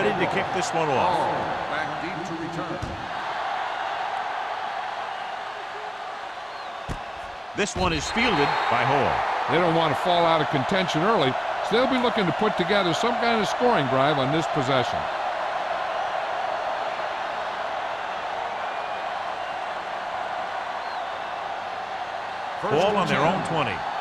to kick this one off. Back deep to return. This one is fielded by Hall. They don't want to fall out of contention early, so they'll be looking to put together some kind of scoring drive on this possession. Ball on their own 20.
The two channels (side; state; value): both; identical; correlation 1.00